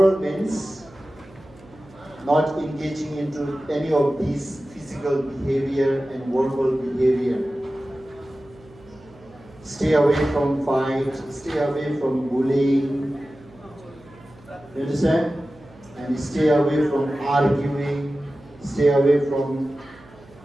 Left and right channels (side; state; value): right; noise; hum, 24 dB below the sound